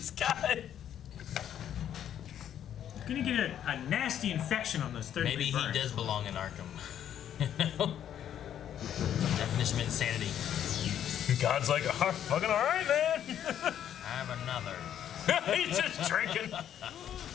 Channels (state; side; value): quieter; right; 10.1 dB